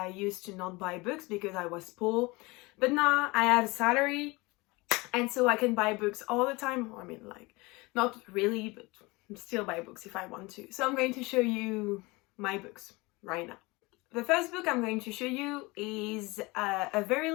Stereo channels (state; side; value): quieter; right; 23.9 dB